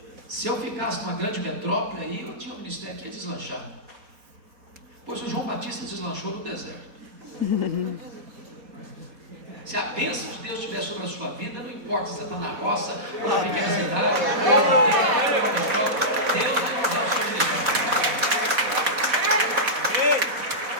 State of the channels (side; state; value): left; late; 4.1 ms